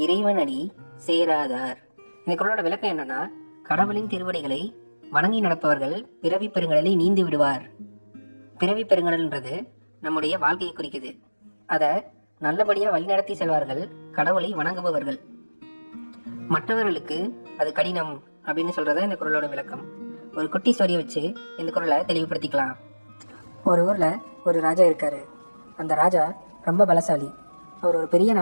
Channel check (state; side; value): inverted; both; correlation -1.00